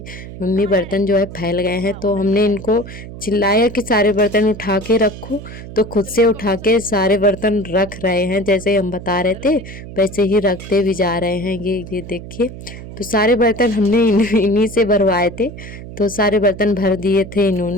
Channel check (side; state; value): right; noise; hum, 13 dB below the sound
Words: मम्मी बर्तन जो है फैल गए हैं। तो हमने इनको चिल्लाया कि सारे बर्तन उठा के रखो, तो खुद से उठा के सारे बर्तन रख रहे हैं, जैसे हम बता रहे थे वैसे ही रखते भी जा रहे हैं। ये देखिए, तो सारे बर्तन हमने इन्हीं से भरवाए थे, तो सारे बर्तन भर दिए थे